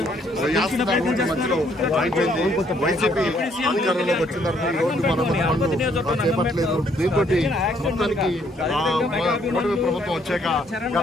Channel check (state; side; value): normal; both; correlation 0.67